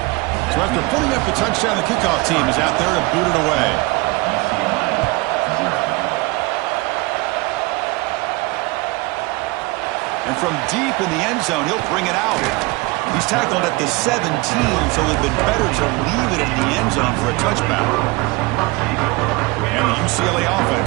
So after putting up the touchdown, the kickoff team is out there to boot it away. And from deep in the end zone, he'll bring it out. He's tackled at the 17, so it would have been better to leave it in the end zone for a touchback. And the UCLA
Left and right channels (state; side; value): quieter; left; 23.9 dB